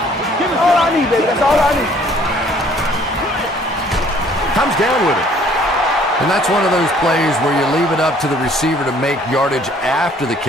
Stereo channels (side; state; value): both; normal; correlation 0.58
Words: That's all I need, baby. That's all I need. Comes down with it. And that's one of those plays where you leave it up to the receiver to make yardage after the